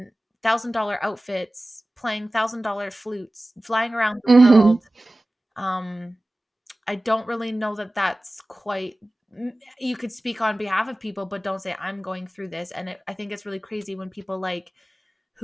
$1,000 outfits, playing $1,000 flutes, flying around the Hmm. world. Um, I don't really know that that's quite. You could speak on behalf of people, but don't say I'm going through this. And I think it's really crazy when people like,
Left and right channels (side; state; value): both; normal; correlation 0.97